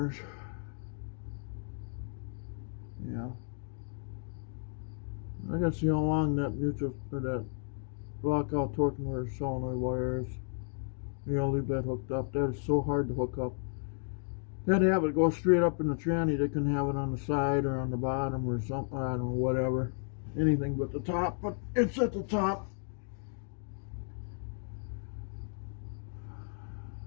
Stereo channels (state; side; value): silent; right; 55 dB below the other